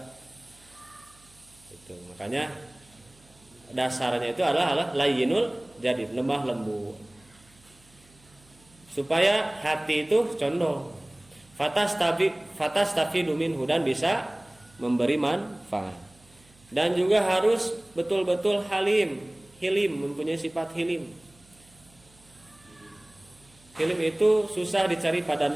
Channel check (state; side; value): noise; right; hum, 29 dB below the sound